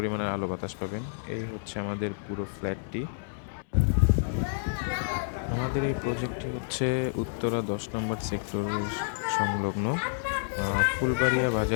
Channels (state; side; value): silent; right; 58 dB below the other